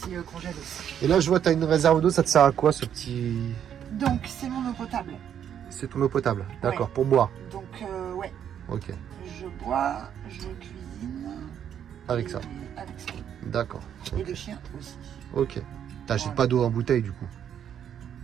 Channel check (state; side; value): quieter; left; 9.2 dB